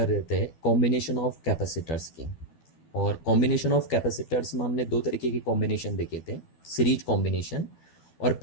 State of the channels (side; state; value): right; late; 12 ms